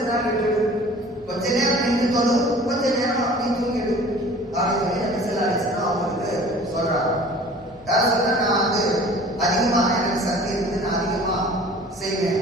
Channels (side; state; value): both; normal; correlation 0.46